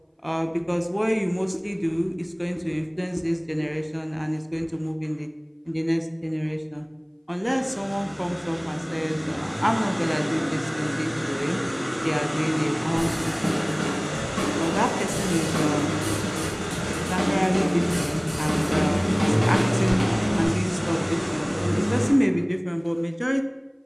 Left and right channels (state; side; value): identical; both; correlation 1.00